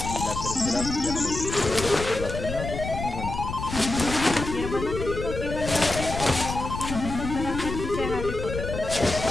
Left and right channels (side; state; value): left; noise; rumble, 6 dB below the sound